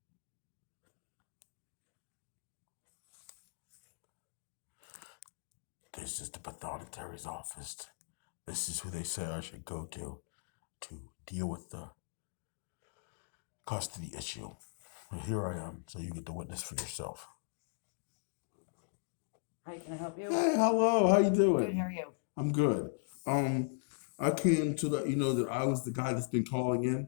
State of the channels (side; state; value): right; silent; digital silence